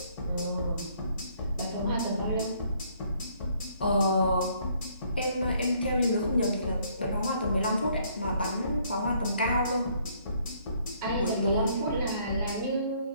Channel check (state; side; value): inverted; both; correlation -0.65